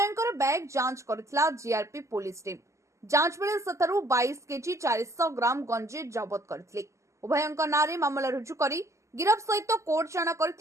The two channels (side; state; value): left; late; 0.14 ms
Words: बैग जांच करथिला जीआरपी पुलिस टीम। जांच बेले सतरु 22 केजी 400 ग्राम गंजी जबत करथिले। उभयंकर नारे मामला रुजु करी गिरफ सहित कोर्ट चाणा